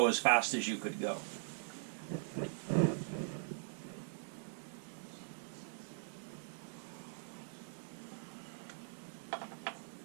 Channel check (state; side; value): silent; left; digital silence